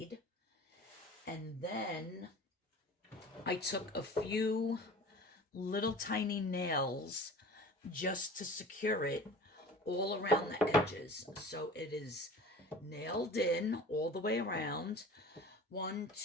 And then I took a few little tiny nails just to secure it all around the edges. So it is nailed in all the way around. 1,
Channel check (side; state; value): both; normal; correlation 0.40